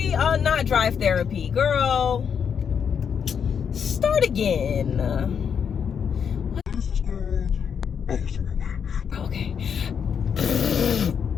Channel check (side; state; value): right; quieter; 7.2 dB